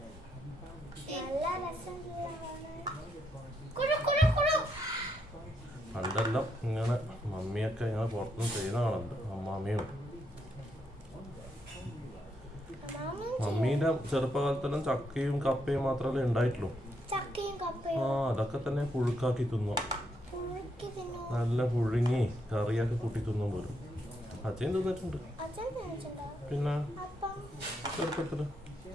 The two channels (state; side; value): normal; both; correlation 0.77